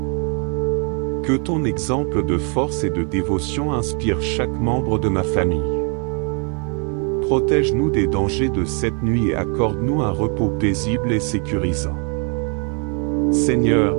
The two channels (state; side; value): quieter; left; 38.1 dB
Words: Que ton exemple de force et de dévotion inspire chaque membre de ma famille. Protège-nous des dangers de cette nuit et accorde-nous un repos paisible et sécurisant. Seigneur,